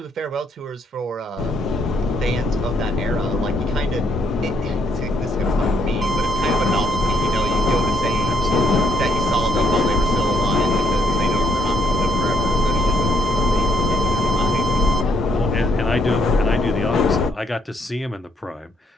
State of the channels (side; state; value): both; normal; correlation 0.71